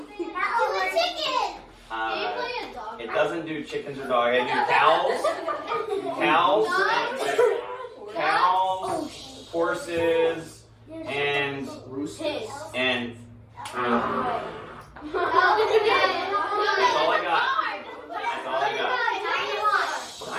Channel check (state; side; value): identical; both; correlation 1.00